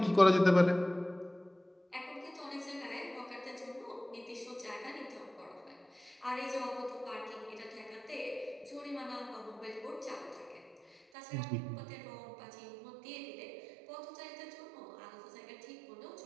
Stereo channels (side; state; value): left; drops out; at 11.0 s